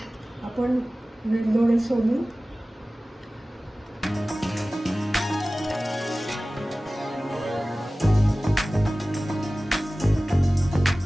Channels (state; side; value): normal; both; correlation 0.97